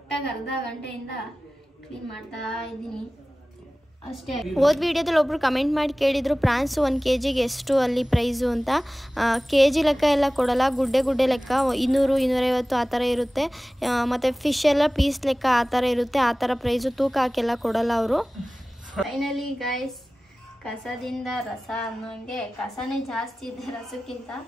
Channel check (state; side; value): normal; both; correlation 0.97